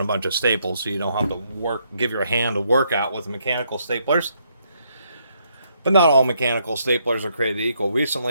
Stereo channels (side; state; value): both; inverted; correlation -0.74